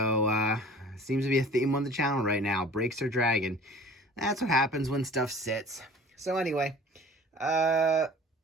seems to be a theme on the channel right now. Brakes are dragging. That's what happens when stuff sits. So anyway,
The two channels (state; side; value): normal; both; correlation 0.45